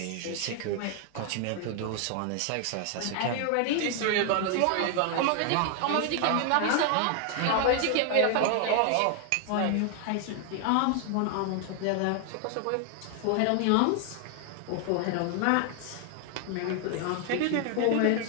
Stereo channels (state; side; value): different; both; correlation 0.00